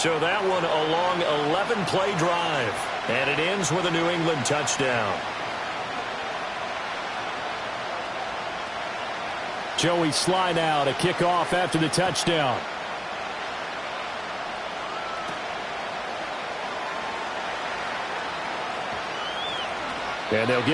that one a long 11-play drive. And it ends with a New England touchdown. Joey Sly now to kick off after the touchdown. And they'll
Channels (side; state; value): both; identical; correlation 1.00